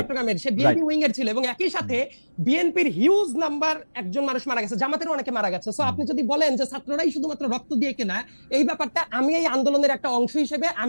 সে বিএনপি উইং এর ছিল এবং একই সাথে বিএনপির হিউজ নাম্বার একজন মানুষ মারা গেছে, জামাতের অনেকে মারা গেছে। সো আপনি যদি বলেন যে ছাত্ররাই শুধুমাত্র রক্ত দিয়ে কেনা, এই ব্যাপারটা আমি এই আন্দোলনের একটা অংশ হিসেবে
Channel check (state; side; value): inverted; both; correlation -1.00